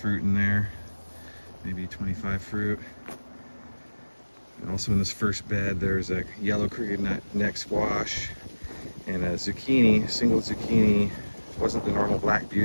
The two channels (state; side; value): inverted; both; correlation -1.00